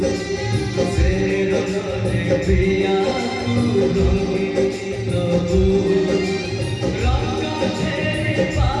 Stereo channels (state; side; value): identical; both; correlation 1.00